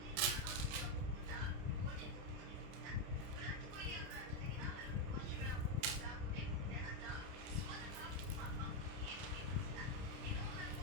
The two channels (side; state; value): left; late; 30 ms